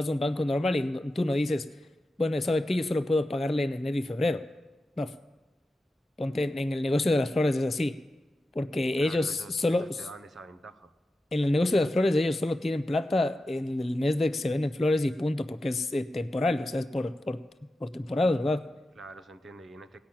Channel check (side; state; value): both; normal; correlation 0.92